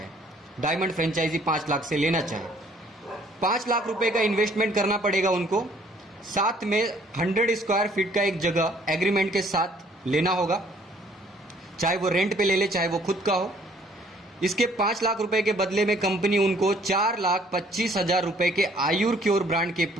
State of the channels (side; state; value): both; normal; correlation 0.60